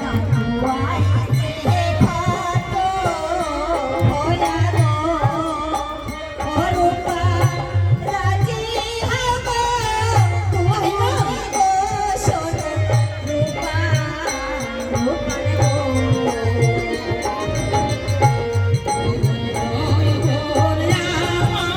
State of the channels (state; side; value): identical; both; correlation 1.00